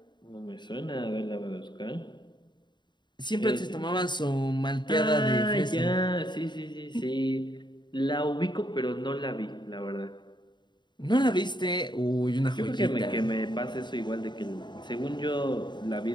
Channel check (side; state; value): right; late; 0.22 ms